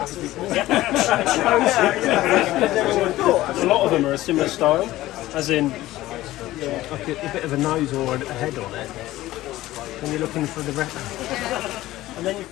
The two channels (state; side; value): quieter; right; 16.2 dB